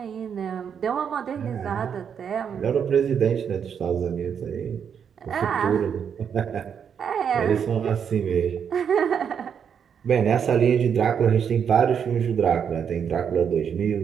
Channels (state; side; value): quieter; left; 7.6 dB